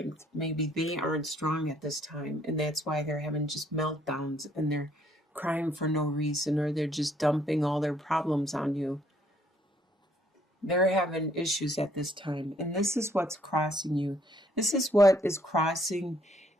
Maybe they aren't strong at this time, and that's why they're having just meltdowns and they're crying for no reason, or they're just dumping all their problems on you. They're having issues at this time, and this is what's crossing you. This is what is crossing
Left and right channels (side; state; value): both; normal; correlation 0.66